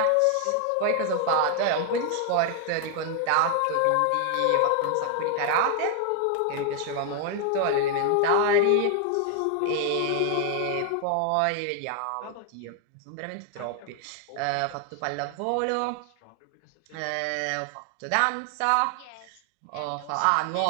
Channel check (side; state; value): both; different; correlation 0.00